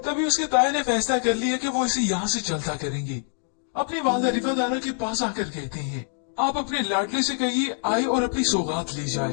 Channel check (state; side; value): silent; right; 62 dB below the other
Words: उसके ताए ने फैसला कर लिया कि वो इसे यहाँ से चलता करेंगे। अपनी वालदा रिफादाना के पास आकर कहते हैं, आप अपने लाडले से कहिए आए और अपनी सौगात ले